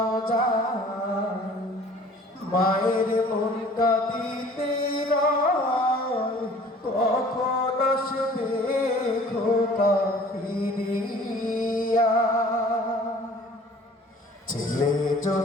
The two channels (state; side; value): normal; both; correlation 0.50